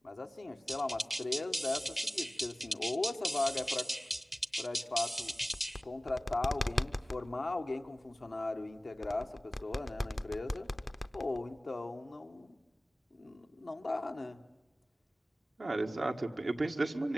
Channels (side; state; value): both; normal; correlation 0.97